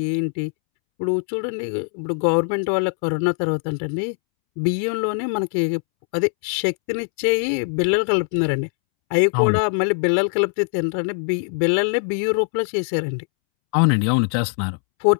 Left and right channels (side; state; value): right; silent; 64 dB below the other